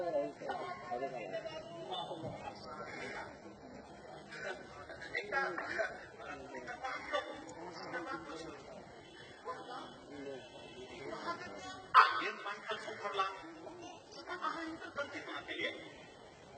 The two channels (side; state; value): both; identical; correlation 1.00